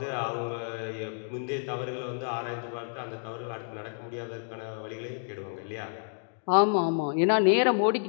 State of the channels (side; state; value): right; silent; digital silence